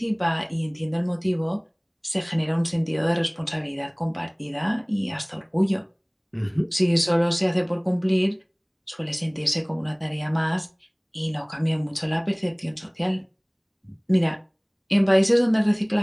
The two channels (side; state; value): both; identical; correlation 1.00